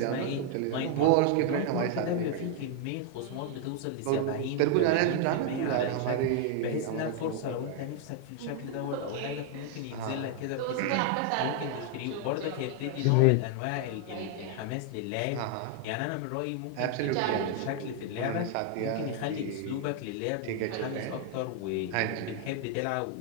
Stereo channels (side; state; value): both; different; correlation 0.00